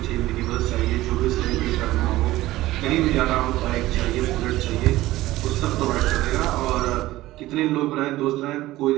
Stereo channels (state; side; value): quieter; left; 16.8 dB